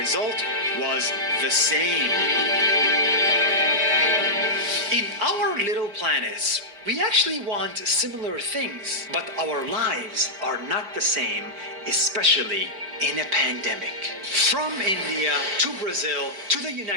was the same. In our little planets, we actually want similar things, but our lives are not the same, especially in a pandemic. From India to Brazil to the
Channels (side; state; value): left; late; 4.9 ms